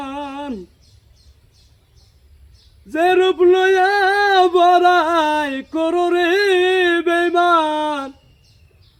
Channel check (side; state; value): both; identical; correlation 1.00